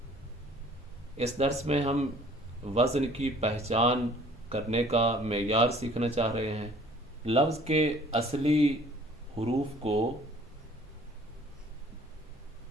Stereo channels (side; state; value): both; normal; correlation 0.54